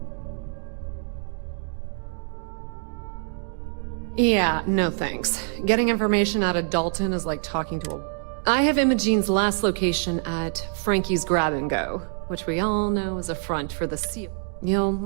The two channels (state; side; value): silent; left; digital silence